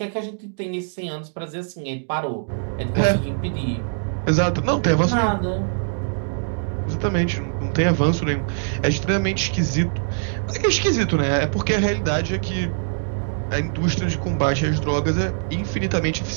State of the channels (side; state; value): left; silent; digital silence